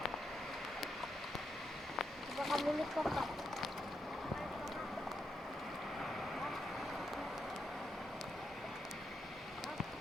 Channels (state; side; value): normal; both; correlation 0.82